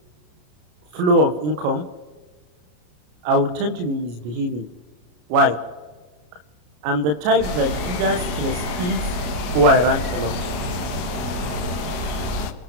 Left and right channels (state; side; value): late; left; 33 ms